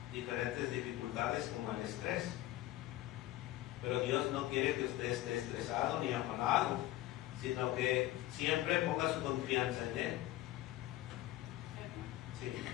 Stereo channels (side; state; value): right; quieter; 15.3 dB